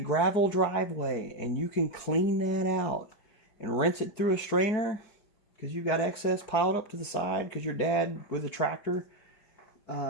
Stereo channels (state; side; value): late; right; 4.9 ms